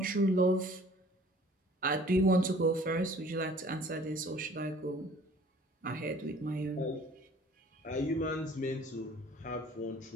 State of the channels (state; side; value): normal; both; correlation 0.52